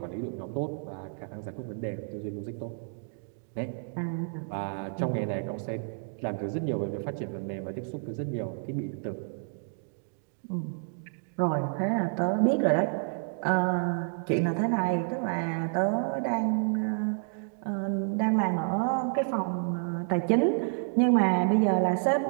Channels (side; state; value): left; silent; 58 dB below the other